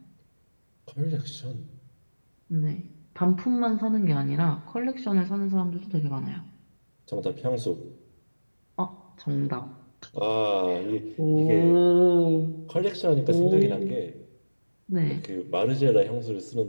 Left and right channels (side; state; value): both; inverted; correlation -1.00